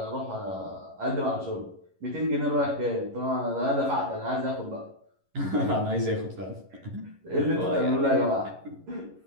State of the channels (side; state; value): left; late; 11 ms